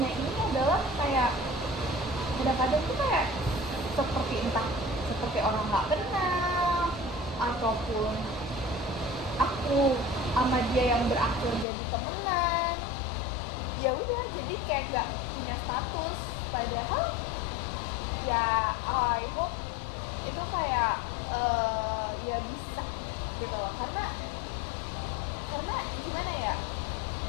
ini adalah kayak kadang-kadang tuh kayak seperti orang nggak kenal, ataupun aku sama dia yang berakhir jadi temenan. Ya udah, jadi kayak nggak punya status. Padahal ya I hope itu kayak ya bisa gitu loh, karena gimana ya,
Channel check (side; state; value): right; drops out; at 11.7 s